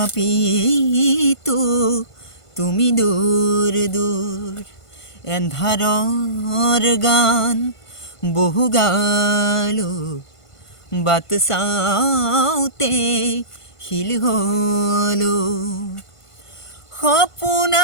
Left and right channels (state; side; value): late; right; 1.5 ms